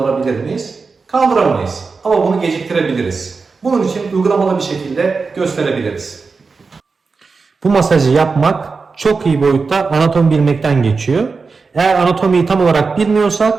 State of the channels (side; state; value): left; quieter; 4.6 dB